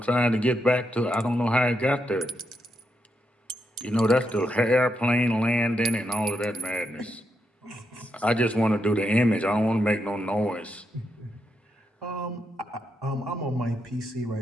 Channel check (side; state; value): both; normal; correlation 0.82